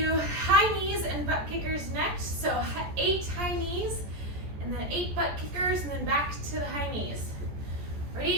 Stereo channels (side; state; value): left; late; 14 ms